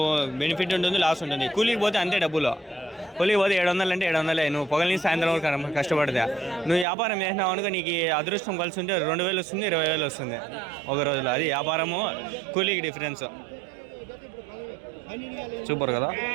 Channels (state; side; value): drops out; left; at 6.9 s